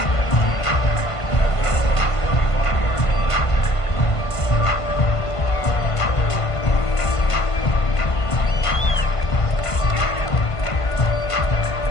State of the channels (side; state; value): right; late; 1.5 ms